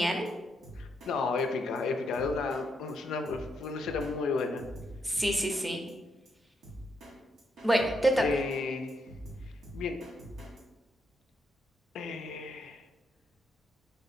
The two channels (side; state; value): both; normal; correlation 0.78